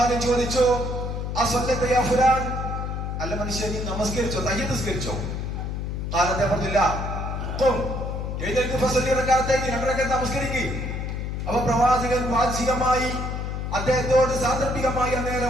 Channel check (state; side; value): noise; left; hum, 3 dB below the sound